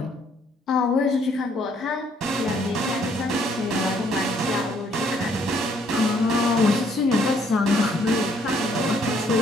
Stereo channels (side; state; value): both; normal; correlation 0.66